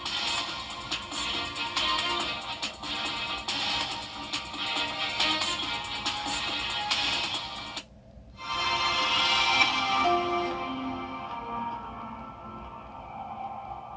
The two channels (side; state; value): both; identical; correlation 1.00